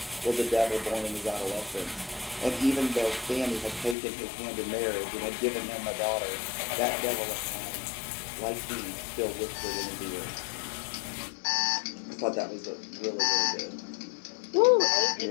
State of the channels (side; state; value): right; drops out; at 4.0 s